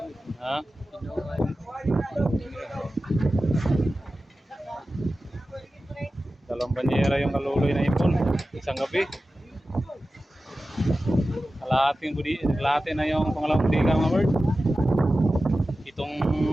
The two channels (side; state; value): both; normal; correlation 0.94